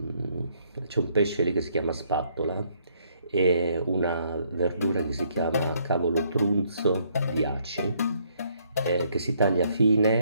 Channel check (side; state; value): both; inverted; correlation -0.69